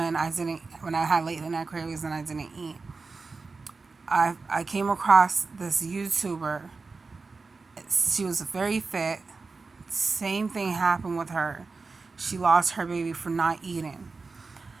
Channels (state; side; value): quieter; left; 4.1 dB